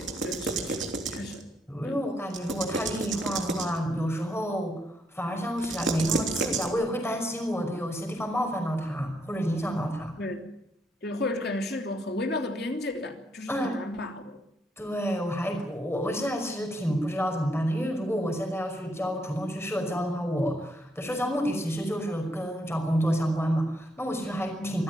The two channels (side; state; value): both; normal; correlation 0.75